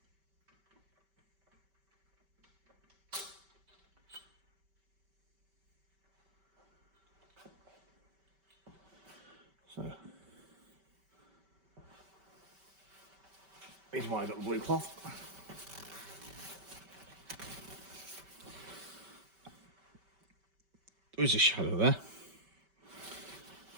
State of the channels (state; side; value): late; left; 5.2 ms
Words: So here's why I got the blue cloth. There is a shadow there.